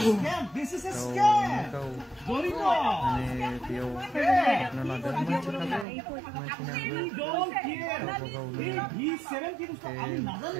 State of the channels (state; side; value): drops out; left; at 5.9 s